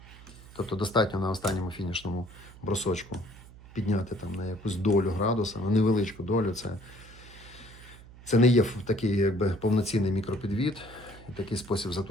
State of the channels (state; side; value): noise; right; hum, 19 dB below the sound